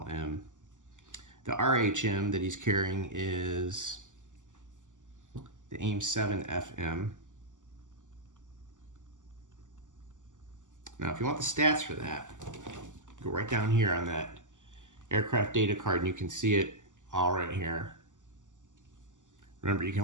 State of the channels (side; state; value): left; late; 0.87 ms